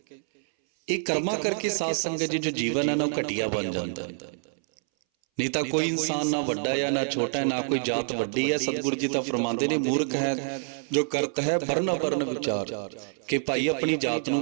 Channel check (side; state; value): left; silent; 60 dB below the other